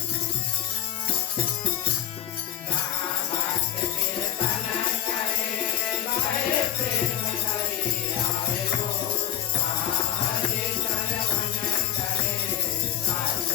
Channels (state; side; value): quieter; right; 11.1 dB